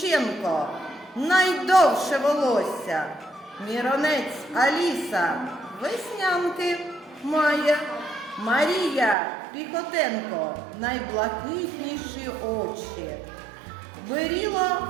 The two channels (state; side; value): drops out; left; at 9.2 s